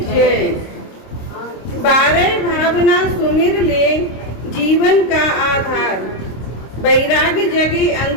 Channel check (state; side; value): late; right; 26 ms